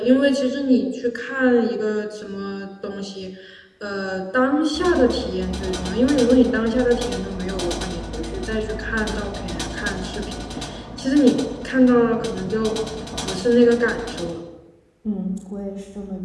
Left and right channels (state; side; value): identical; both; correlation 1.00